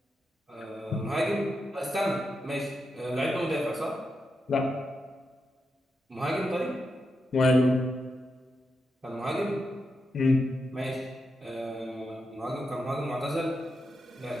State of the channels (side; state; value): both; normal; correlation 0.86